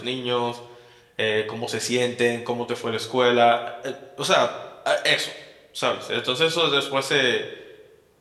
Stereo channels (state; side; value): identical; both; correlation 1.00